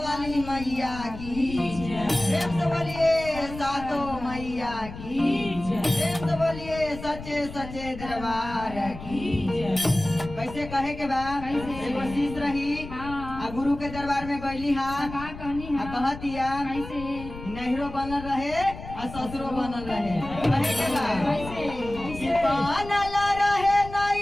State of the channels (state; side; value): noise; left; rumble, 12 dB below the sound